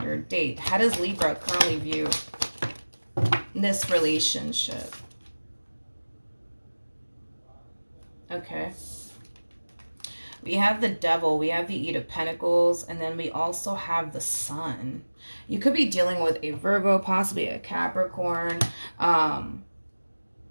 date. How does Libra currently view this relationship? Okay. We have the Devil, we have the Eight of Pentacles, and then we also have the Sun. You could be dealing with a Virgo, possibly a Capricorn,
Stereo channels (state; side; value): inverted; both; correlation -1.00